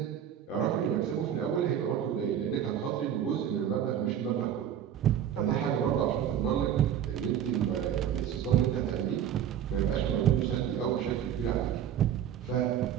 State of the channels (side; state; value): left; quieter; 9.7 dB